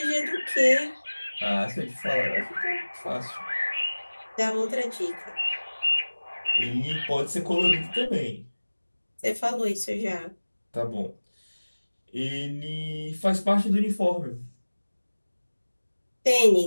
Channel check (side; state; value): both; inverted; correlation -1.00